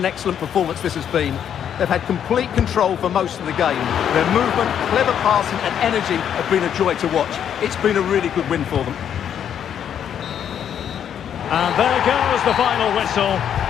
excellent performance this has been. They've had complete control for most of the game. Their movement, clever passing and energy have been a joy to watch. It's been a really good win for them. And there goes the final whistle.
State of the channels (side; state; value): right; quieter; 9.0 dB